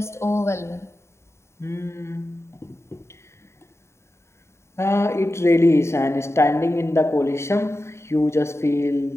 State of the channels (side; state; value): right; late; 0.13 ms